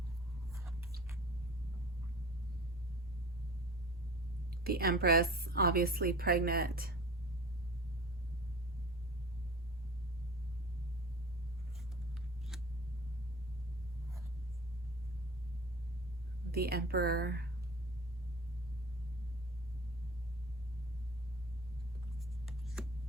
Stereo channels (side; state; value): both; normal; correlation 0.40